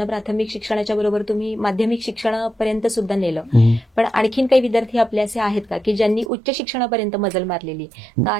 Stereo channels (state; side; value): drops out; left; at 6.3 s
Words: प्राथमिक शिक्षणाच्या बरोबर तुम्ही माध्यमिक शिक्षणापर्यंत सुद्धा नेलं. पण आणखीन काही विद्यार्थी आपले असे आहेत का की ज्यांनी उच्च शिक्षणापर्यंत मजल मारलेली, तर